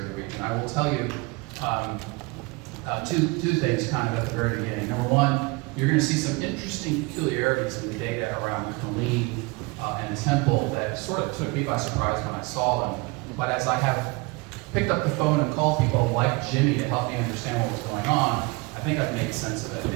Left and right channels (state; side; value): quieter; left; 26.1 dB